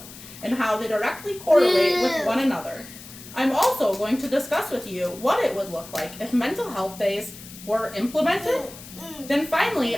and how they directly correlate with one another. I'm also going to discuss with you what it would look like if mental health days were implemented. Then finally,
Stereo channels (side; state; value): left; noise; hiss, 16 dB below the sound